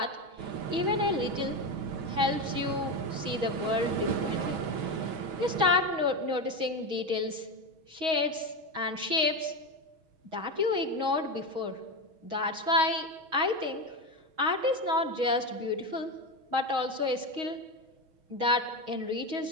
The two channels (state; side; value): late; left; 6.3 ms